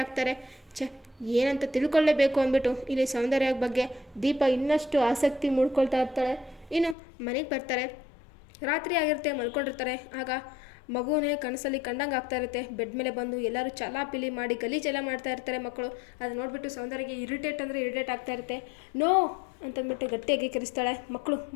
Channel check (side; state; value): right; drops out; at 7.0 s